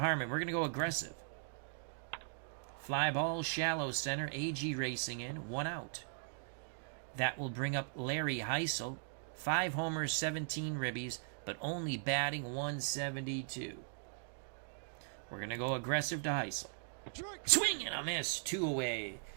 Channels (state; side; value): silent; left; digital silence